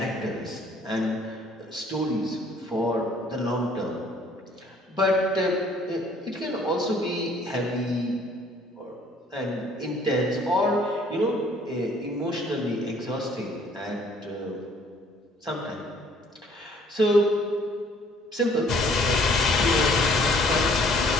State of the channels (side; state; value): both; normal; correlation 0.59